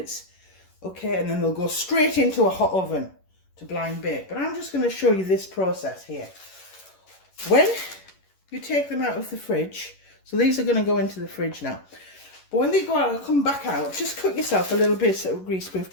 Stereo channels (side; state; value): right; late; 11 ms